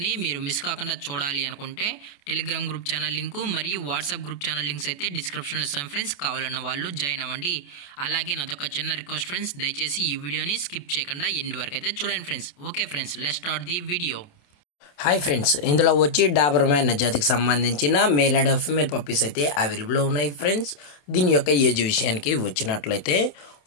మీరు మిస్ కాకుండా చూడాలి అనుకుంటే టెలిగ్రామ్ గ్రూప్ ఛానల్ లింకు మరియు వాట్సాప్ గ్రూప్ ఛానల్ లింక్స్ అయితే డిస్క్రిప్షన్లో ఇస్తాను ఫ్రెండ్స్. కావాలన్న వాళ్ళు జాయిన్ అవ్వండి. అలాగే నాదొక చిన్న రిక్వెస్ట్ ఫ్రెండ్స్, దయచేసి ఈ వీడియోని స్కిప్ చేయకుండా ఎండ్ వరకు అయితే చూడండి friends. Okay friends, let's start the video. Hi friends, ఇందులో వచ్చి డాబర్మ్యాన్ జాతికి సంబంధించిన మేల్ అండ్ ఫీమేల్ పప్పీస్ అయితే అవైలబుల్లో ఉన్నాయి ఫ్రెండ్స్. దీని యొక్క ఏజ్ విషయానికి వచ్చినట్లయితే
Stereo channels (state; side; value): late; right; 27 ms